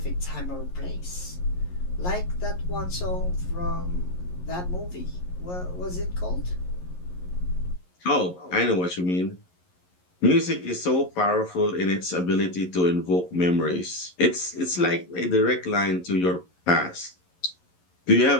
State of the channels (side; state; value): right; late; 11 ms